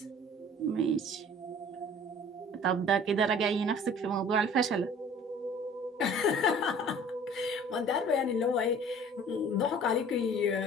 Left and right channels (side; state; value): both; normal; correlation 0.48